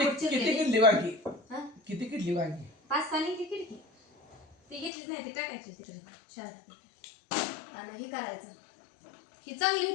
किती चिरली किडली वांगी किती किडली वांगी 5-6 निघली खिडकी ती घेतलीच नाही ती टाकायची तिकडे शाळेत आणि हे करायचं ही चांगली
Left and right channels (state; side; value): drops out; right; at 4.9 s